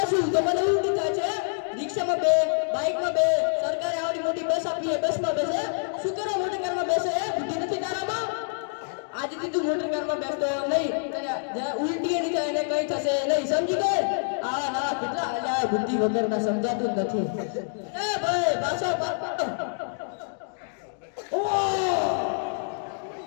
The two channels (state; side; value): silent; right; digital silence